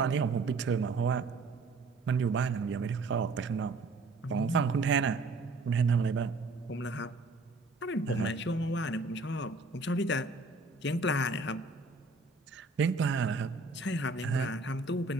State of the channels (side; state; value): left; quieter; 3.6 dB